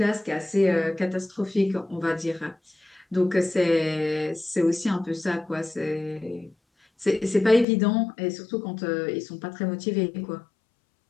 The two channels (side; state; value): right; drops out; at 7.7 s